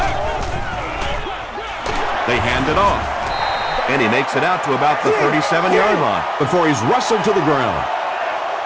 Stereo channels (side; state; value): both; identical; correlation 1.00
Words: They hand it off. And he makes it out to about the 37-yard line before he's wrestled to the ground.